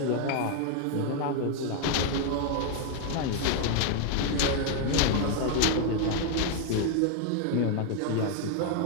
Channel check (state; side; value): different; both; correlation 0.00